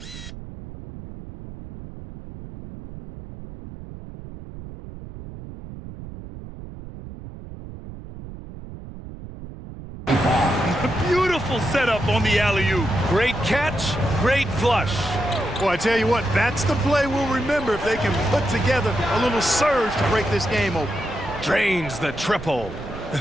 Beautiful setup on the alley-oop. Great catch, great flush. Well, I tell you what, that's the play we'll remember if they can put together a little surge to break this game open. Drains the triple.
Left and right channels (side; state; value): right; noise; rumble, 13 dB below the sound